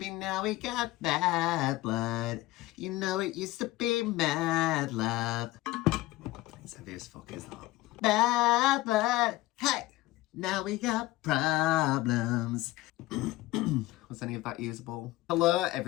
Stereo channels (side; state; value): right; quieter; 18.0 dB